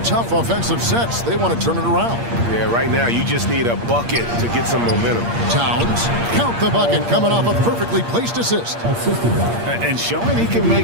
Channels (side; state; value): left; late; 8.6 ms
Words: tough offensive sets. They want to turn it around. Yeah, right now you just need a bucket to get some momentum. Towns, count the bucket, coming off a perfectly placed assist. And showing he can